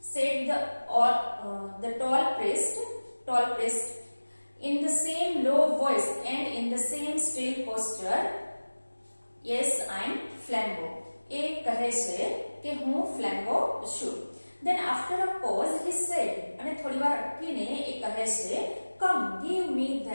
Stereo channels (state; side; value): inverted; both; correlation -1.00